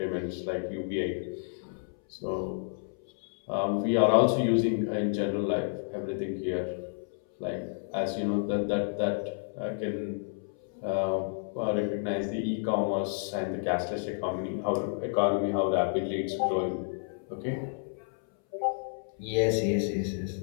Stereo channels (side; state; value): right; silent; 58 dB below the other